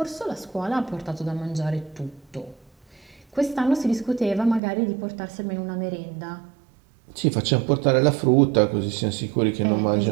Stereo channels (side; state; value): left; drops out; at 4.6 s